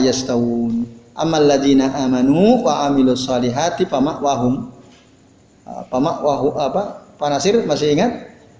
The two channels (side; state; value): both; identical; correlation 1.00